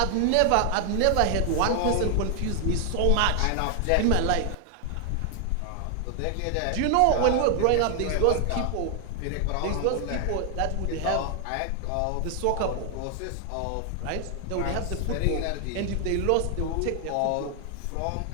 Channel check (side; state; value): both; different; correlation 0.00